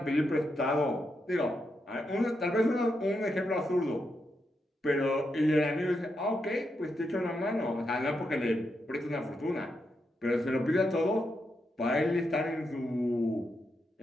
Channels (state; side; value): normal; both; correlation 0.83